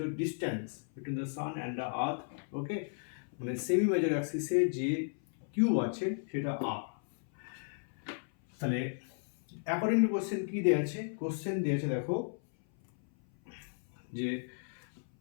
distance between the sun and the earth, okay? মানে সেমি মেজর অ্যাক্সিসে যে কিউব আছে সেটা আর। তাহলে অ্যাকর্ডিং টু কোশ্চেন কি দেওয়া আছে? কোশ্চেন দিয়েছে দেখো যে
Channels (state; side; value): silent; right; 55 dB below the other